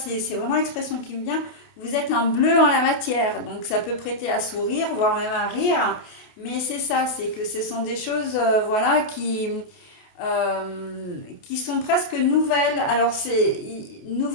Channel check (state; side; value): late; right; 28 ms